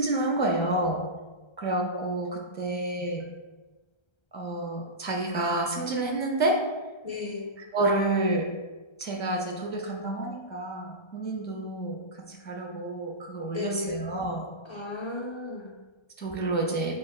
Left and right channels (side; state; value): right; late; 1.3 ms